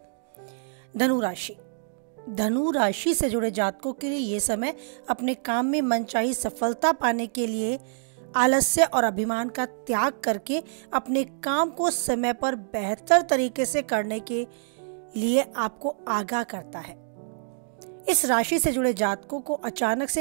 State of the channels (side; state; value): left; silent; digital silence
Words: धनु राशि से जुड़े जातकों के लिए ये समय अपने काम में मनचाही सफलता पाने के लिए आलस्य और अभिमान का त्याग करके अपने काम को समय पर बेहतर तरीके से करने के लिए आपको आगाह करता है। इस राशि से जुड़े जातकों को अचानक